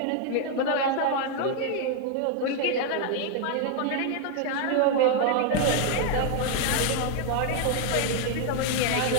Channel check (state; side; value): different; both; correlation 0.00